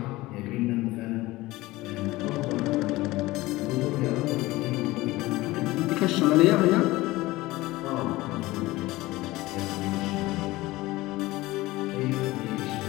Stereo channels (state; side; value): quieter; right; 19.1 dB